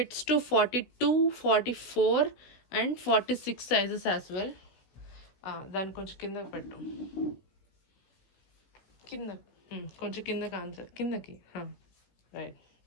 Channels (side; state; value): right; late; 16 ms